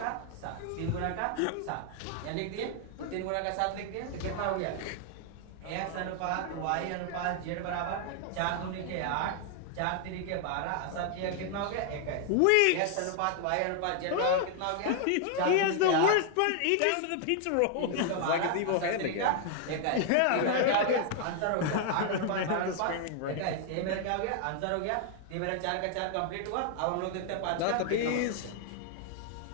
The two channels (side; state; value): both; different; correlation 0.00